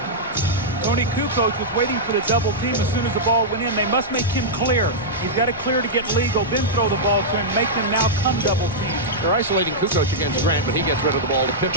Tony Kukoc was waiting for the double team as soon as the ball went in. They must make him clear. He's got to clear to get legal, then throw the ball to him, make them now come double team. They're isolating Kukoc against Grant, but he gets rid of the ball to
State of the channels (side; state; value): both; normal; correlation -0.09